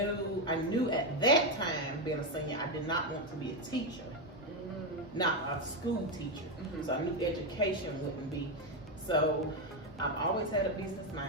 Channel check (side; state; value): both; normal; correlation 0.07